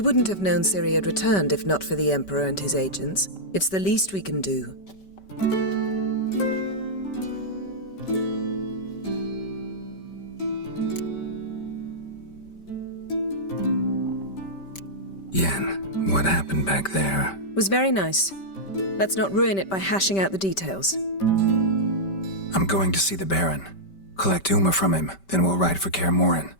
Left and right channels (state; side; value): late; right; 5.2 ms